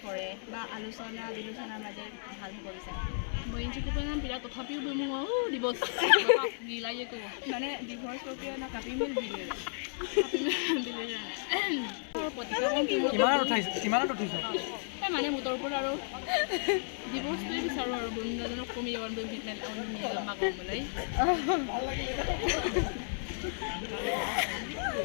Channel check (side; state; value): right; silent; 56 dB below the other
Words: কৰে বা আলোচনা বিলোচনাৰ মাজে ভাল হ'ব বিচাৰে মই ইনচিকুপৰ নাম বিৰাট তথাপিও মোৰ ডিভৰ্চ মিলাই ক'ব মানে ডিভৰ্চ প্ৰক্ৰিয়া ন কাপি মিল দিলে আৰু প্ৰতিভা মানে মোটৰ ওপৰত আৰু ডিভৰ্চটোৱে বিচাৰোঁ আৰু বন্ধুজনক কমি যাব মাগবলৈ